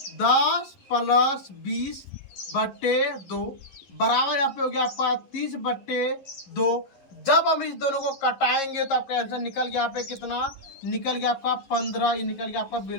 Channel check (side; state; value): right; late; 11 ms